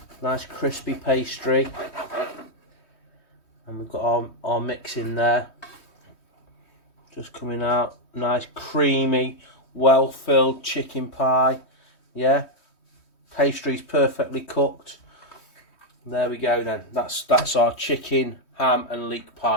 nice crispy pastry. And we've got our mix in there. Just coming out, nice creamy, well-filled chicken pie. Yeah, pastry's perfectly cooked. There we go then, that's our chicken, ham and leek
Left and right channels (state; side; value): late; right; 3.2 ms